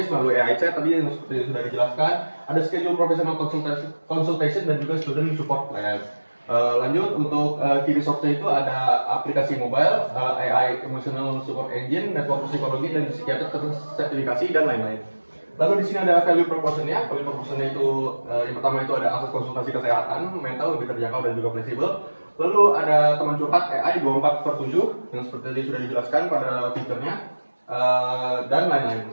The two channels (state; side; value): inverted; both; correlation -1.00